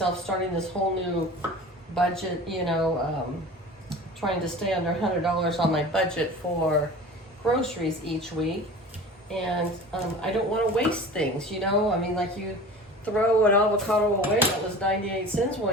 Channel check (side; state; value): both; normal; correlation 0.38